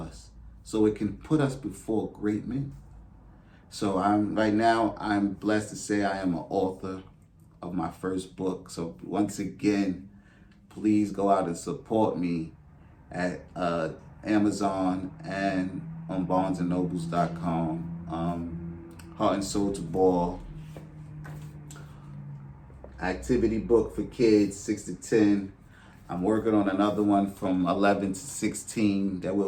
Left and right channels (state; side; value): identical; both; correlation 1.00